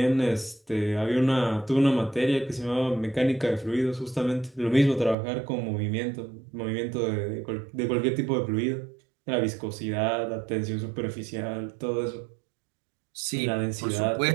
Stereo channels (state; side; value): drops out; left; at 5.2 s